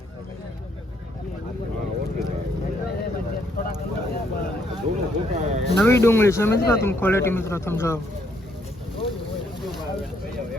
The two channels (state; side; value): normal; both; correlation 0.70